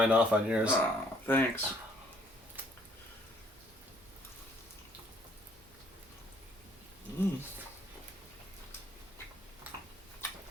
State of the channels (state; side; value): normal; both; correlation 0.63